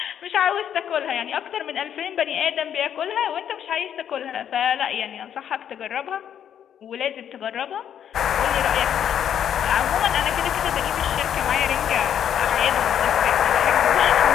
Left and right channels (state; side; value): quieter; right; 9.3 dB